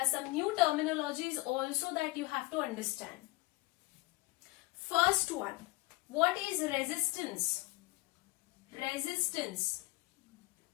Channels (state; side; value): quieter; right; 21.7 dB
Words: some new terminologies also that you have to understand. First one, what is resistance? Resistance